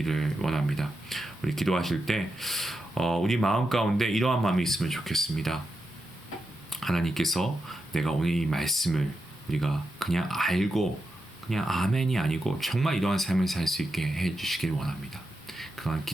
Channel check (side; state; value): both; normal; correlation 0.87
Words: 원합니다. 우리 기도하실 때 우리 마음 가운데 이러한 마음이 있으면 좋겠습니다. 하나님께서 내가 오늘 이 말씀을 우리가 그냥 알고 그냥 아멘이 아니고 정말 이러한 삶을 살 수 있게 해주시길 원합니다. 그런